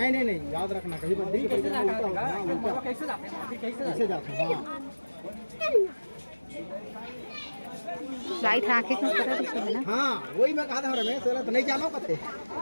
याद रखना कहीं पर कैसे जाते हैं। लाइट आंखें क्यों कर रही है ना? हाँ वही मैं कहा था रमेश तो नहीं जानो कते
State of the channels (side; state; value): both; inverted; correlation -1.00